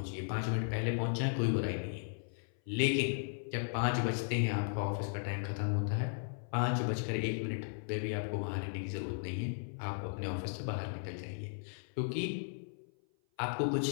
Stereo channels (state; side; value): silent; right; 54 dB below the other